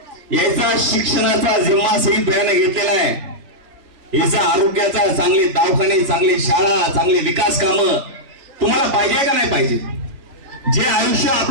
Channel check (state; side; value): late; left; 2.9 ms